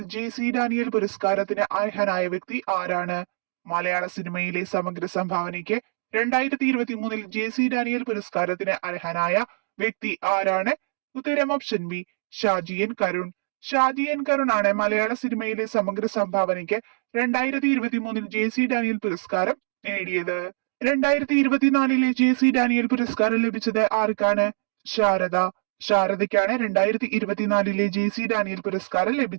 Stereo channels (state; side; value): silent; left; digital silence